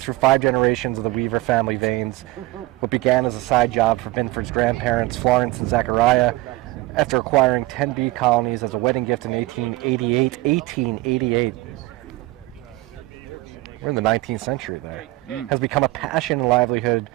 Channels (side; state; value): left; quieter; 19.7 dB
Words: 5 generations of the Weaver family veins. What began as a side job for Binford's grandparents, Florence and Zachariah, after acquiring 10 bee colonies as a wedding gift in 1888. we're in the 19th century there, has become a passion and livelihood